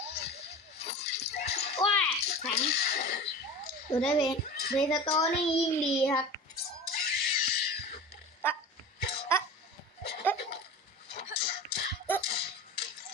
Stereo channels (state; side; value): normal; both; correlation 0.34